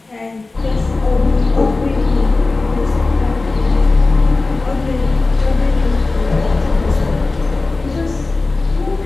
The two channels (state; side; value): quieter; right; 3.4 dB